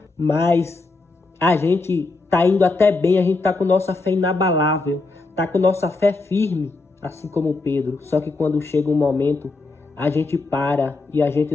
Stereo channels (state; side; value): quieter; right; 3.5 dB